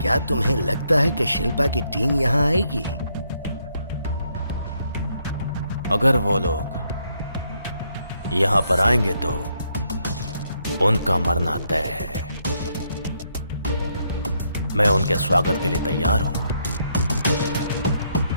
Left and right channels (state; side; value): inverted; both; correlation -0.75